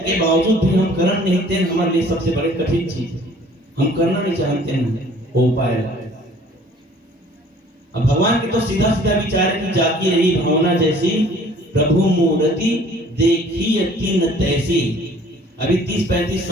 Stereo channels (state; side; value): normal; both; correlation 0.53